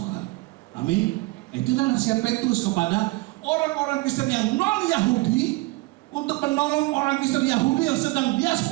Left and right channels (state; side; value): quieter; left; 22.6 dB